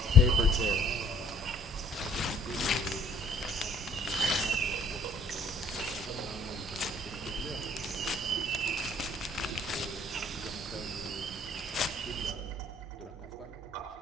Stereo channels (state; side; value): normal; both; correlation 0.59